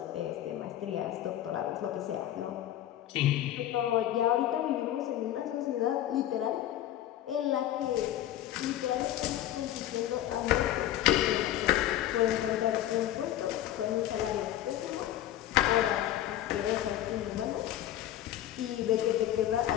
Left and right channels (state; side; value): quieter; right; 12.7 dB